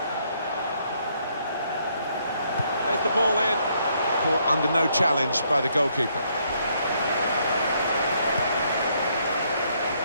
There's the ball in. Caught under no challenge by the goalkeeper.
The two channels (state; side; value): inverted; both; correlation -0.71